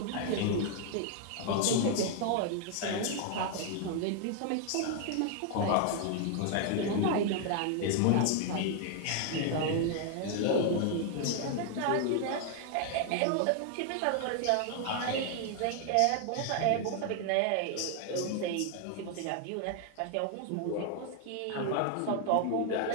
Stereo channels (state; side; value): different; both; correlation 0.00